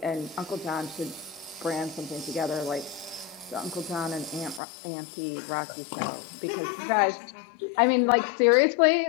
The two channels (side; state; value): right; drops out; at 4.6 s